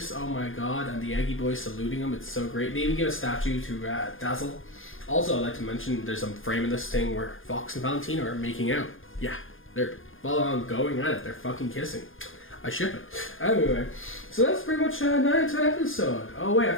oh my god, and the Eggy boys saluting him. It's so great. They even give a statue to Dazzle. Also, I'd like to mention there's some frame in this thing where Fox and Valentina are making out. Yeah, they're full on going at it. They're fucking kissing. I ship it. Anyway, so that's pretty much 9 out of 10 episode. Oh wait, I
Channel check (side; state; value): right; late; 0.59 ms